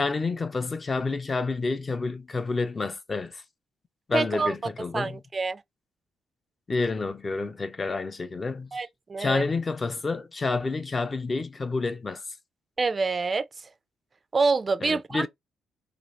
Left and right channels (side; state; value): both; normal; correlation 0.90